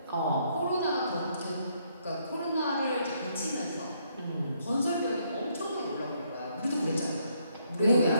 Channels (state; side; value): inverted; both; correlation -0.72